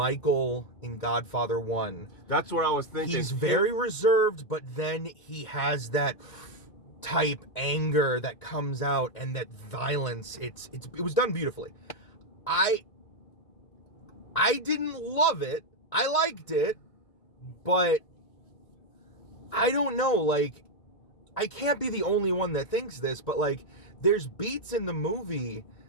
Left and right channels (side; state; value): right; late; 1.9 ms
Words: in Godfather 1. That's what I was thinking. He's very reserved, but then he has that type anger that comes out and that violence. It was done beautifully. I didn't love it. I liked it, but I don't know, like, I can't be the only one that thinks this, but like, there's beats in the movie